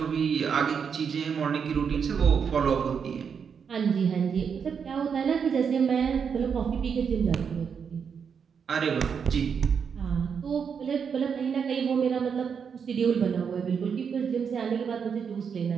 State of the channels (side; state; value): left; quieter; 6.7 dB